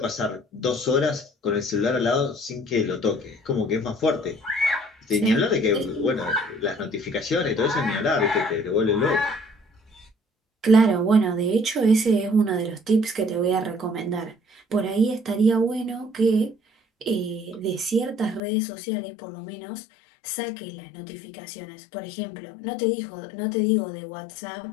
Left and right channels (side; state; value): right; drops out; at 18.4 s